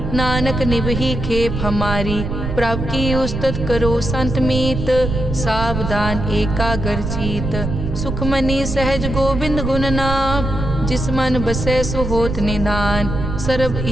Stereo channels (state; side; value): noise; right; rumble, 4 dB below the sound